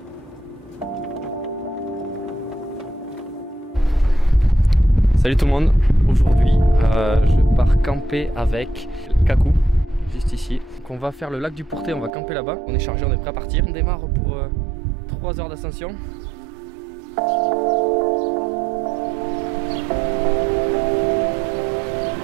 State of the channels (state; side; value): drops out; left; at 12.1 s